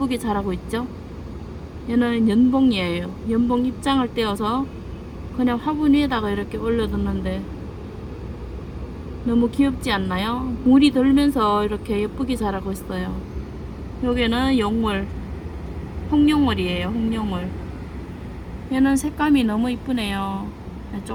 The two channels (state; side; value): identical; both; correlation 1.00